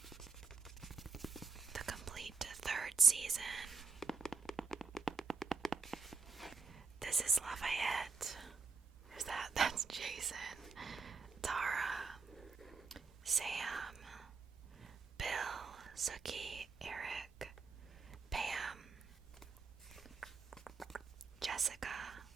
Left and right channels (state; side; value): quieter; left; 4.6 dB